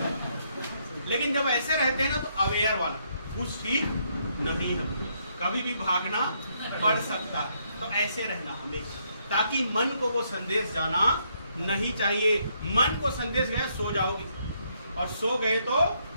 लेकिन जब ऐसे रहते हैं ना तो अवेयर वाला कुछ ठीक नहीं है, कभी भी भागना पड़ सकता है। तो ऐसे रहना हमेशा, ताकि मन को वो संदेश जाना नहीं चाहिए। मन को संदेश गया सो जाओगे, और सो गए तो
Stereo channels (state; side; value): inverted; both; correlation -0.74